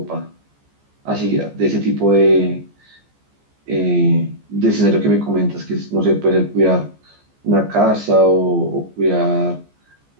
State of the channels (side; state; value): left; late; 14 ms